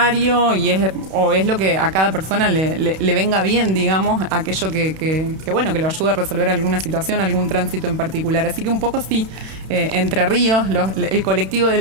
y es lo que a cada persona le venga bien, digamos, aquello que lo ayude a resolver alguna situación, algún tránsito en particular. Así que un poco sí, Entre Ríos, el colectivo de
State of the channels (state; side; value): late; left; 31 ms